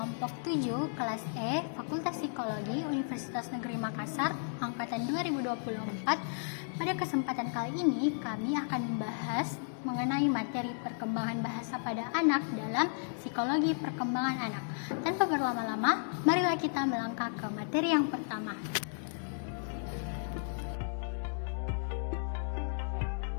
7 kelas E Fakultas Psikologi Universitas Negeri Makassar angkatan 2024. Pada kesempatan kali ini kami akan membahas mengenai materi perkembangan bahasa pada anak dalam psikologi perkembangan anak. Tanpa berlama-lama, marilah kita melangkah ke materi yang pertama.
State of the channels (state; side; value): silent; right; digital silence